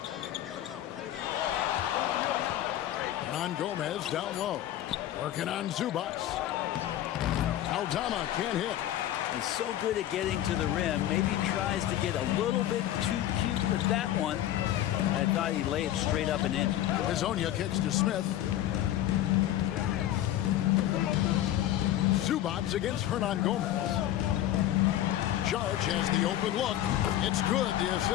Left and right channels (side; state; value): right; quieter; 12.9 dB